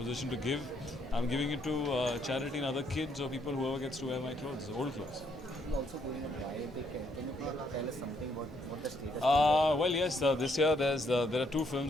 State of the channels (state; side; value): normal; both; correlation 0.72